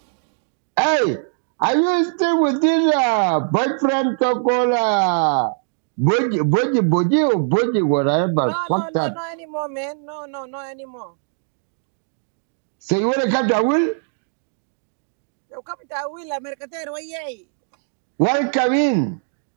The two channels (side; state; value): left; silent; digital silence